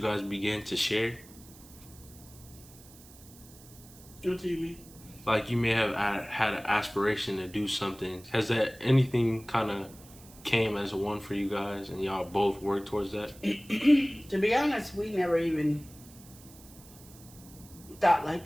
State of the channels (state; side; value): noise; right; hiss, 21 dB below the sound